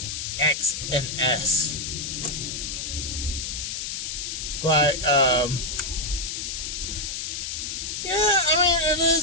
X and S. But, it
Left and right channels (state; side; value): noise; left; hiss, 4 dB below the sound